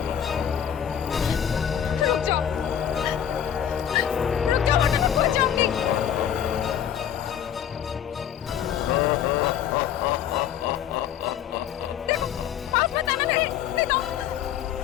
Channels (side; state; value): right; quieter; 9.5 dB